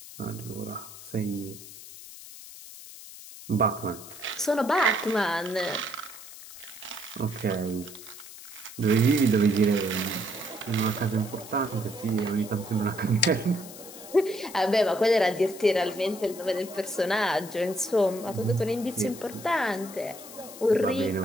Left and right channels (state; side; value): noise; left; hiss, 15 dB below the sound